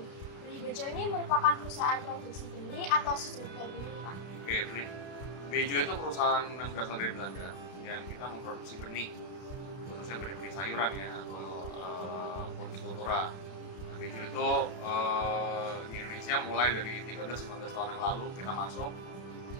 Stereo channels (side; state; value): right; late; 32 ms